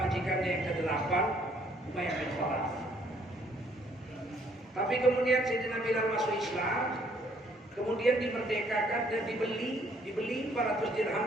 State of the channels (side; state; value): both; normal; correlation 0.65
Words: majikannya yang ke-8, Umayyah bin Khalaf. Tapi kemudian Sayyidina Bilal masuk Islam, kemudian dimerdekakan dan dibeli 400 dirham